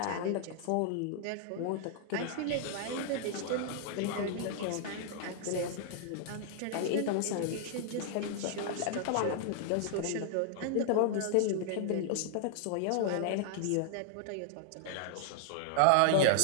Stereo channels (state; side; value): different; both; correlation -0.01